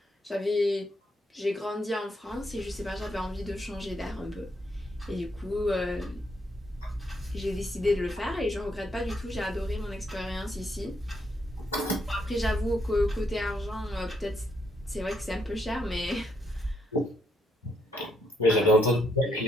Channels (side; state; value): both; normal; correlation 0.76